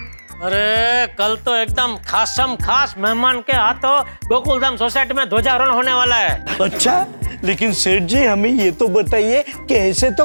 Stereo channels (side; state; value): both; inverted; correlation -1.00